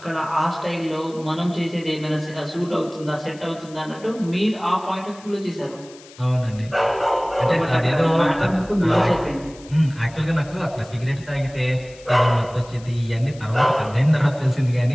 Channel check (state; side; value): noise; left; hiss, 22 dB below the sound